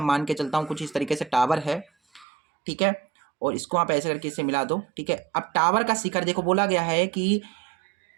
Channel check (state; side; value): drops out; left; at 2.2 s